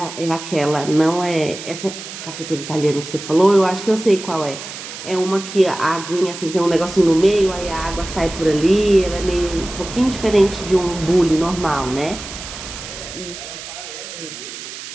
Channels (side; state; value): right; noise; hiss, 11 dB below the sound